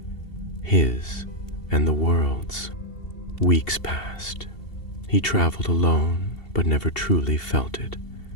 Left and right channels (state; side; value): late; right; 2.7 ms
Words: his and the world's. Weeks passed. He traveled alone, but never truly felt it.